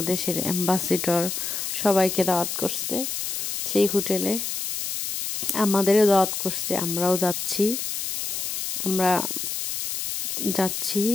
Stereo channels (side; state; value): left; noise; hiss, 3 dB below the sound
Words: দেশের অ্যাম্বাসেডর সবাইকে দাওয়াত করছে সেই হোটেলে। আমাদেরও দাওয়াত করছে, আমরাও যাচ্ছি। আমরা যাচ্ছি